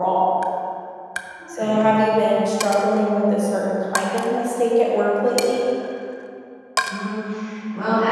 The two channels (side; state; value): both; identical; correlation 1.00